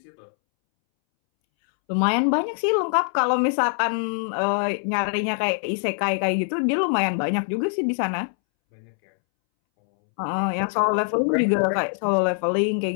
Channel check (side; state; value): right; silent; 63 dB below the other